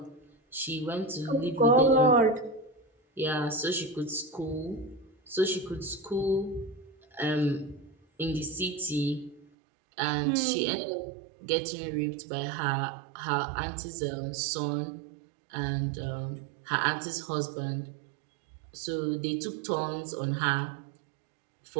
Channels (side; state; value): left; drops out; at 9.5 s